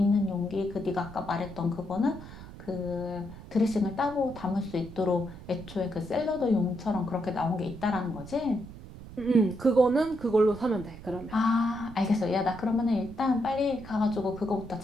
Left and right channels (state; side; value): noise; right; rumble, 15 dB below the sound